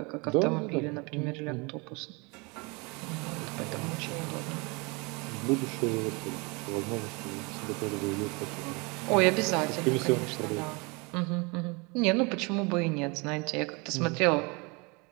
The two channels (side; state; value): left; quieter; 28.8 dB